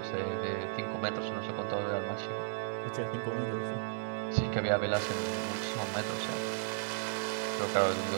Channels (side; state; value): left; silent; 55 dB below the other